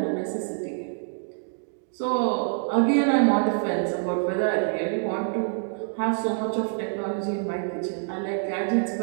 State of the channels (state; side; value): silent; left; 61 dB below the other